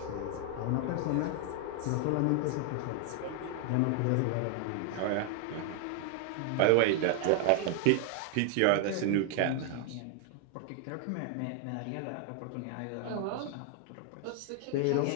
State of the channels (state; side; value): different; both; correlation 0.00